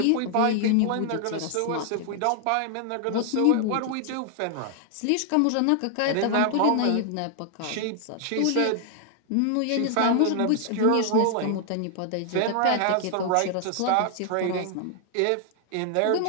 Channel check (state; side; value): different; both; correlation 0.00